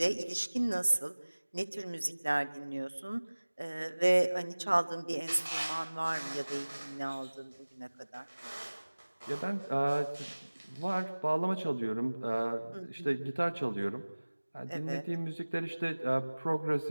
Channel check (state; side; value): inverted; both; correlation -1.00